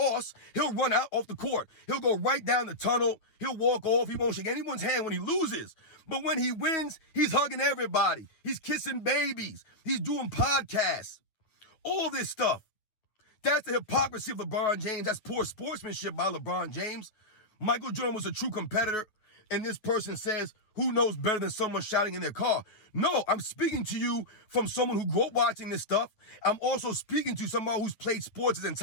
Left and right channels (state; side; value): late; right; 9.4 ms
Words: he'll run out off the court. He'll go right down the tunnel. He'll walk off. He won't shake anyone's hand when he loses. But when he wins, he's hugging everybody. He's kissing babies. He's doing podcasts. All this stuff. That's the hypocrisy of LeBron James. That's poor sportsmanship by LeBron James. Michael Jordan was a true competitor. And this person says, who knows better than someone shouting in their car? No, I'm speaking to you from someone who grew up watching this stuff. I'm also speaking to someone who's played sports his